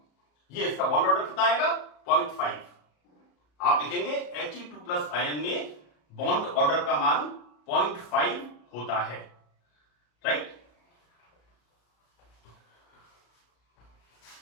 ये इसका बॉन्ड ऑर्डर कितना आएगा, 0.5। आप लिखेंगे He2 प्लस आयन में बॉन्ड ऑर्डर का मान 0.5 होता है, राइट।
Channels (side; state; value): right; late; 34 ms